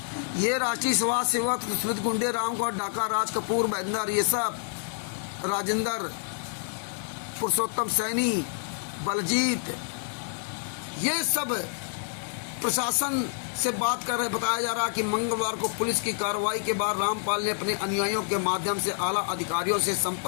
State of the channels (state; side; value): silent; right; digital silence